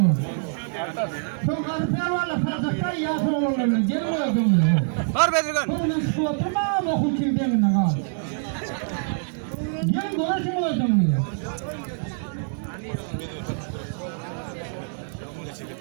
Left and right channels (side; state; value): left; silent; digital silence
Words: Çok harfiyer varla fazlakta yasır olurlar. Gelin orada olur. Var Bedirgan. Sonra şu oturma okul çiğdemine kal. Gelin uğraşın orada olur.